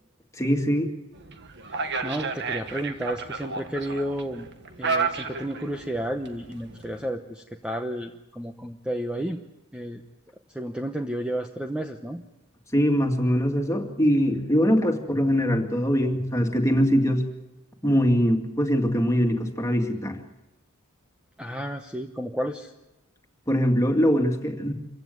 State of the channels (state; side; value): normal; both; correlation 0.81